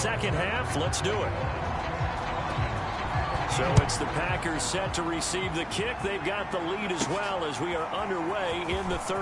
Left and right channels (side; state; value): both; identical; correlation 1.00